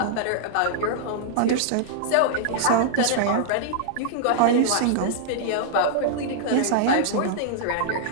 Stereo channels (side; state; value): both; different; correlation -0.02